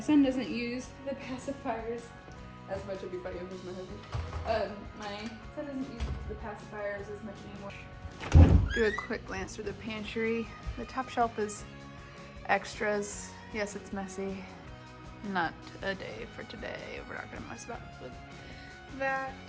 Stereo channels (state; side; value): identical; both; correlation 1.00